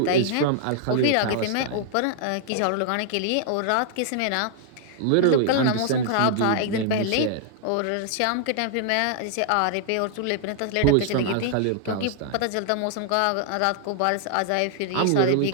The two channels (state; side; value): different; both; correlation -0.01